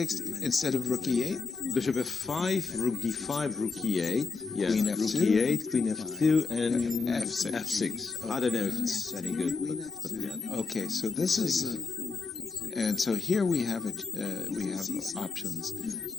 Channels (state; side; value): quieter; right; 4.5 dB